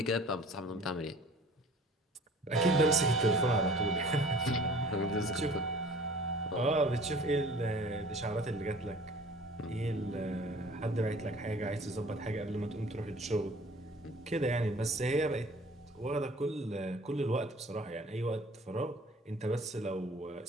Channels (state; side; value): normal; both; correlation 0.49